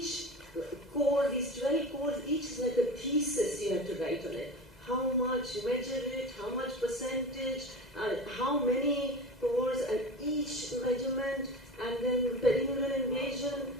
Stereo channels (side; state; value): left; noise; hum, 28 dB below the sound